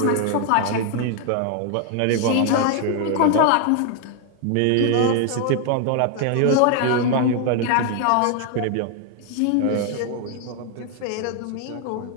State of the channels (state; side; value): different; both; correlation 0.00